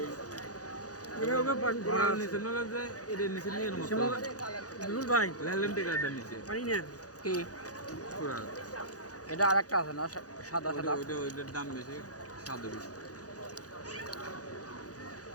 কি এটা আরেকটা আছে না সাদা সাদা ওইটার দাম বেশি, স্বাদ বেশি।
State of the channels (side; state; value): right; late; 0.67 ms